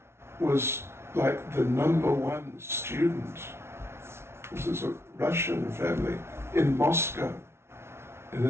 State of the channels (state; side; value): late; left; 0.12 ms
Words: was like the number one student. This is a Russian family in Moscow, in